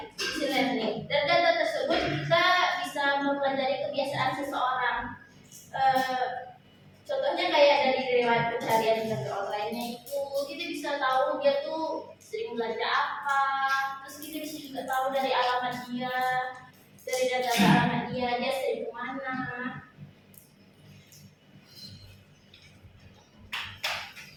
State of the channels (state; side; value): identical; both; correlation 1.00